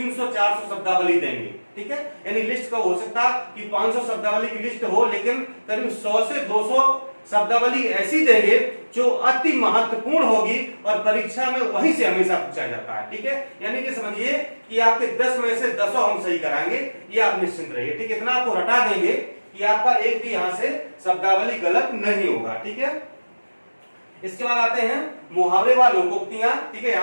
शब्दावली देंगे। ठीक है, यानी लिस्ट का हो सकता कि 500 शब्दावली की लिस्ट हो, लेकिन करीब 100 से 200 शब्दावली ऐसी देंगे जो अति महत्वपूर्ण होगी और परीक्षा में वहीं से हमेशा पूछा जाता है। ठीक है, यानी कि समझिए कि आपके 10 में से 10 हम सही कराएंगे, ये आप निश्चिंत रहिए। ठीक है, इतना आपको रटा देंगे कि आपका एक भी यहाँ से शब्दावली गलत नहीं होगा। ठीक है, इसके बाद आते हैं मुहावरे व लोकोक्तियां। ठीक है,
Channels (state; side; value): inverted; both; correlation -1.00